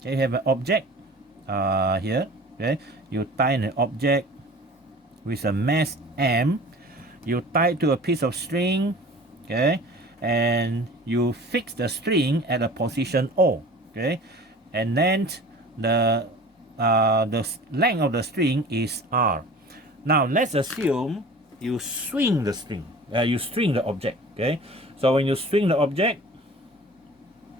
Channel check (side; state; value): both; normal; correlation 0.42